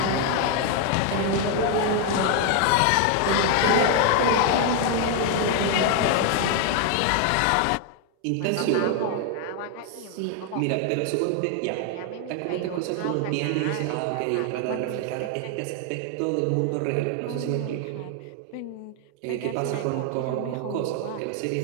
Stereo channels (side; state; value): both; different; correlation 0.01